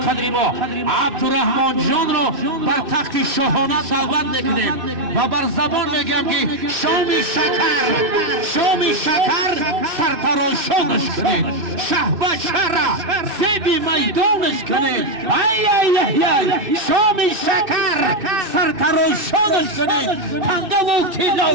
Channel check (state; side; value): late; left; 2.6 ms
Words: ما عبدالرحمن جان رو بر تخت شاهانه دعوت میکنیم و بر زبان میگم که شام شکر سرتراشانش کنید شاهبچه را زیبی میدانش کنید شام شکر سرتراشانش کنید تنگه و تیلا